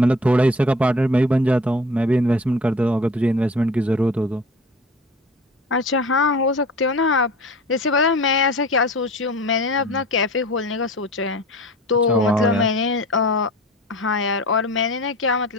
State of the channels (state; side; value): normal; both; correlation 0.40